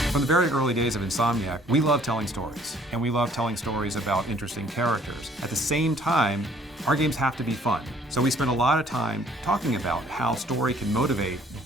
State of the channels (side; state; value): both; normal; correlation 0.59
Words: very early days of Insomniac, we love telling stories, and we love telling stories about interesting characters. At the same time, our games have to be fun. So we spend a lot of time talking about how story can motivate